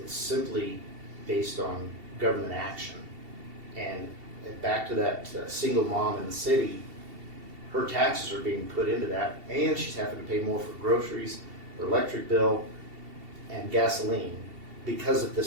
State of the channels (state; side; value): late; left; 2.7 ms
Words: simply based on government action. And back to that single mom in the city, her taxes are being put into that, and she's having to pay more for groceries, her electric bill, and gasoline because of